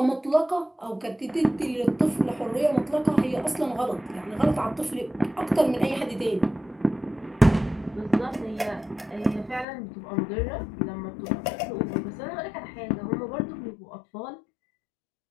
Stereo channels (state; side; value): drops out; right; at 9.7 s